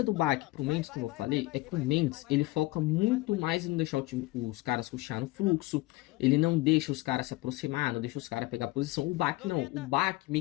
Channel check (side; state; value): right; quieter; 20.1 dB